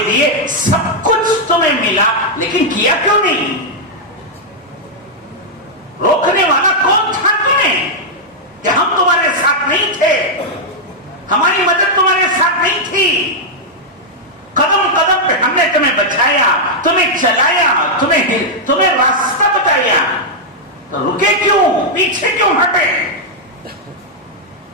دیے, سب کچھ تمہیں ملا, لیکن کیا کیوں نہیں؟ روکنے والا کون تھا تمہیں کہ ہم تمہارے ساتھ نہیں تھے, ہماری مدد تمہارے ساتھ نہیں تھی؟ قدم قدم پہ ہم نے تمہیں بچایا, تمہیں چلایا, تمہیں راستہ بتایا, تو رکے کیوں, پیچھے کیوں ہٹے؟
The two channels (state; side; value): normal; both; correlation -0.04